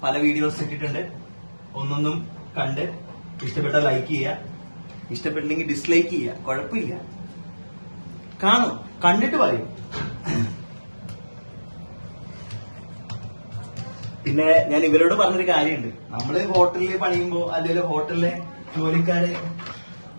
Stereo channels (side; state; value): both; inverted; correlation -1.00